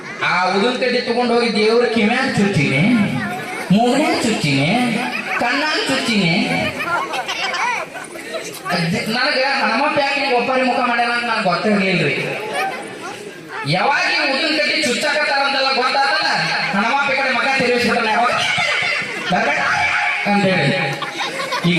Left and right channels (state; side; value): identical; both; correlation 1.00